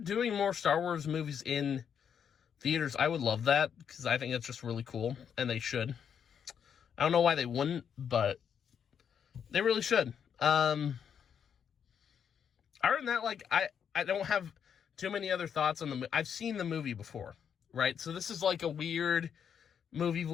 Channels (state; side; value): quieter; right; 7.8 dB